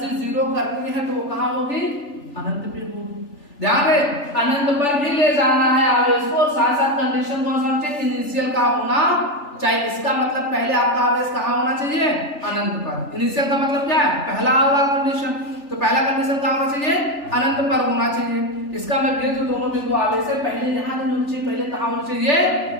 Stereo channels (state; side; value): late; right; 3.4 ms